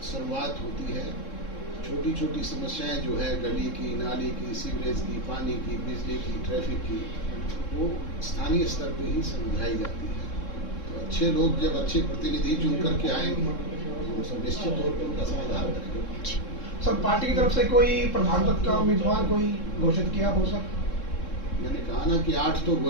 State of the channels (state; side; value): late; right; 3.7 ms